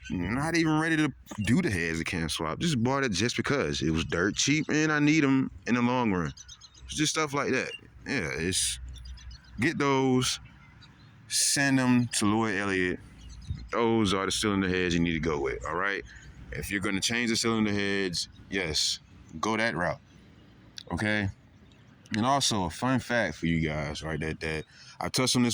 Not even ready to do the heads of can swap. Just bought it just because it was dirt cheap and I need them in the long run. It's just stuff like that. Yeah, get those, send them to Lloyd Elliott. Those are the cylinder heads you need to go with. All right. If you're gonna change the cylinder heads, yes, go that route. Okay. And also a fun fact for you guys, right? That I touched on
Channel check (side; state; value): both; identical; correlation 1.00